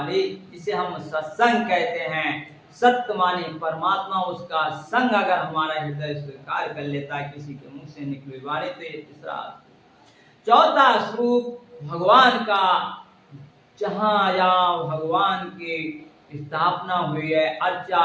जिसे हम सत्संग कहते हैं, सत्य माने परमात्मा, उसका संग अगर हमारा हृदय स्वीकार कर लेता है किसी के मुख से निकली हुई वाणी, तो ये तीसरा। चौथा स्वरूप भगवान का, जहां जहां भगवान की स्थापना हुई है,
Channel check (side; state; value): both; identical; correlation 1.00